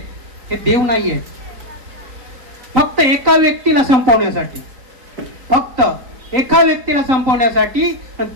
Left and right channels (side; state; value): left; late; 3.9 ms